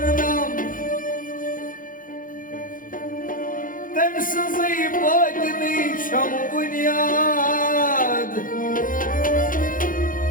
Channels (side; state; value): right; late; 0.40 ms